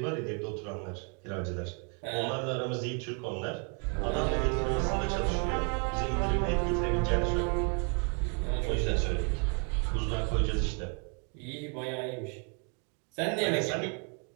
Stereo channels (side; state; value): left; quieter; 38.5 dB